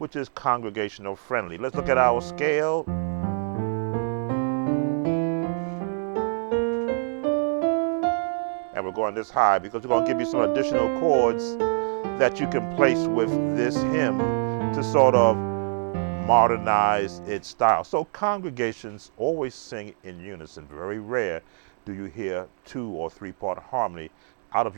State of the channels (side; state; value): left; silent; 62 dB below the other